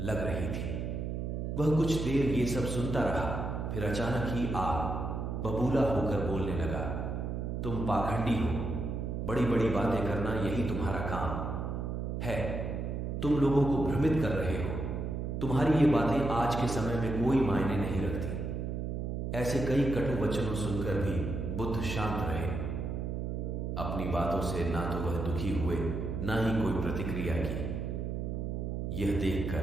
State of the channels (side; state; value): right; noise; hum, 3 dB below the sound